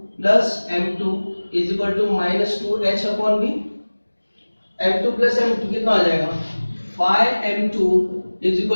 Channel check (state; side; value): inverted; both; correlation -1.00